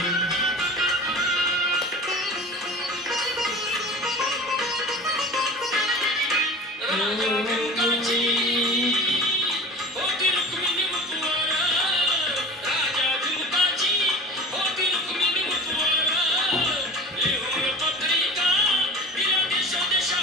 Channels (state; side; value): normal; both; correlation 0.37